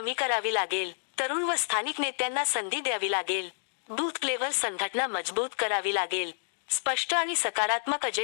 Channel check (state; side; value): silent; right; digital silence